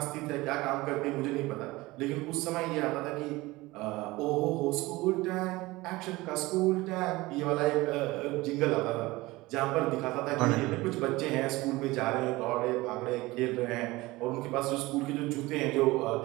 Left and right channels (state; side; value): quieter; left; 20.5 dB